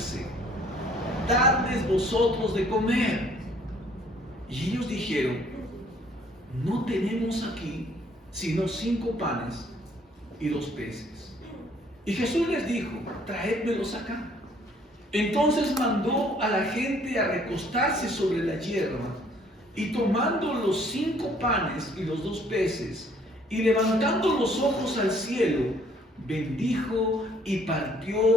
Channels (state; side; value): normal; both; correlation 0.61